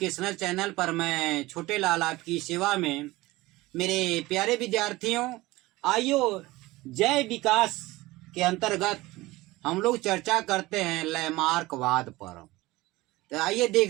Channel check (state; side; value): quieter; left; 19.5 dB